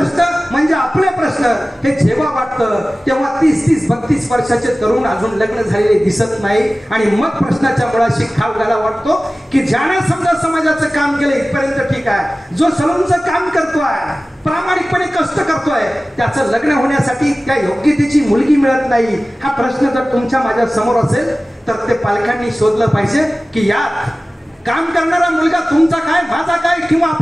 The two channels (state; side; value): normal; both; correlation 0.97